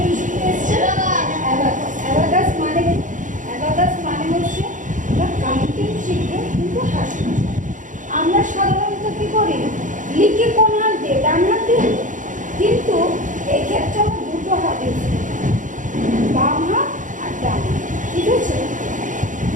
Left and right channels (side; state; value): left; late; 0.37 ms